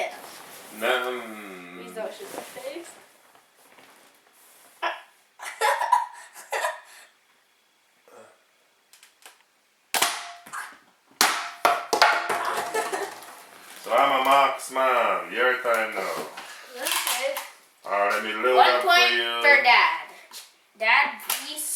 am. Please don't shoot my face. So I'm a marksman. Your time now. Okay. Alright, let me load 1 up point for you. for Dad. Dad v.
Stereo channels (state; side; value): identical; both; correlation 1.00